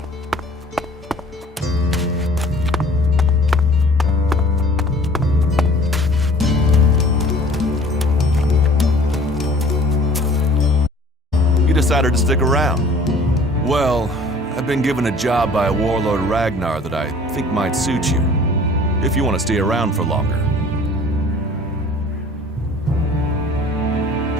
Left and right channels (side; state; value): both; normal; correlation 0.50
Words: You decided to stick around. Well, I've been given a job by Warlord Ragnar that I think might suit you, if you want to stay around for longer.